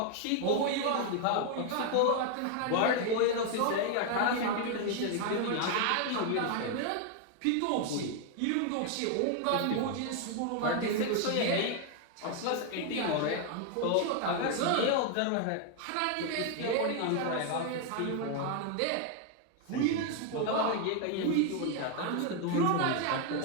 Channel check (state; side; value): different; both; correlation 0.01